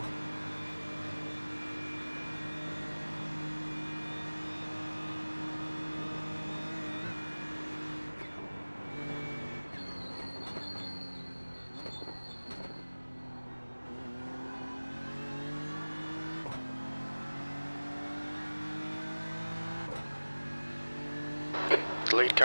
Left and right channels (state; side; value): inverted; both; correlation -1.00